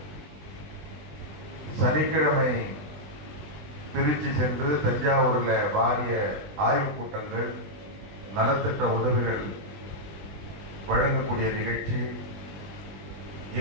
சனிக்கிழமை திருச்சி சென்று தஞ்சாவூரில் வாரிய ஆய்வுக் கூட்டங்கள், நலத்திட்ட உதவிகள் வழங்கக்கூடிய நிகழ்ச்சி,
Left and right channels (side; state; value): left; late; 20 ms